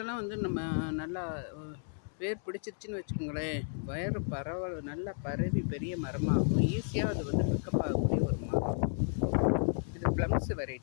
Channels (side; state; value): right; silent; digital silence